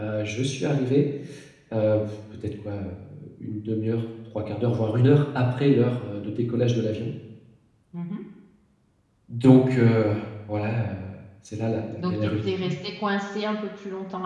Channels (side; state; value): both; identical; correlation 1.00